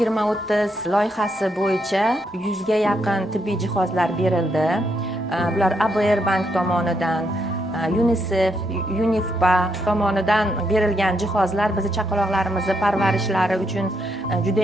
loyihasi bo'yicha 100 ga yaqin tibbiy jihozlar berildi. Bular ABR Bank tomonidan, UNICEF, UNIFPA tomonidan berilgan jihozlar bizni chaqaloqlarimizni parvarishlari uchun juda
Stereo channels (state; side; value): normal; both; correlation 0.78